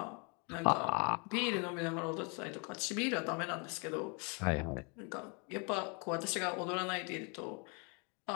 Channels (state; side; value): quieter; right; 34.0 dB